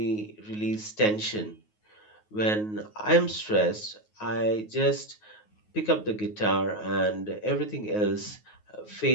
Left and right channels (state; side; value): late; right; 9.4 ms